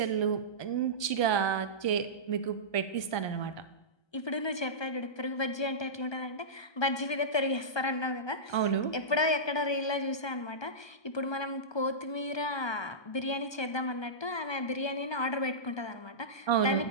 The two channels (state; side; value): late; right; 1.2 ms